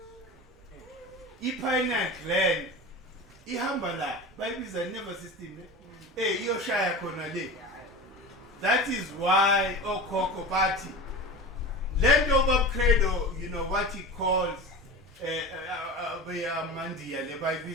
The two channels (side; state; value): both; normal; correlation 0.31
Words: I-pineal gland ihamba la bayibiza nervous system iyoshaya khona le. That is why okhokho bathi land over credo, you know what he calls mandiya le